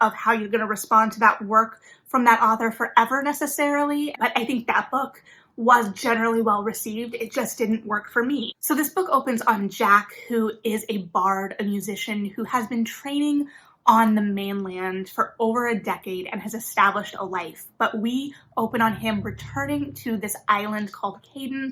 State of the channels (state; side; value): identical; both; correlation 1.00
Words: of how you're going to respond to that work from that author forever necessarily. But I think that book was generally well received. It just didn't work for me. So this book opens on Jack, who is a bard, a musician who has been training on the mainland for over a decade and has established a life. But we open on him returning to this island called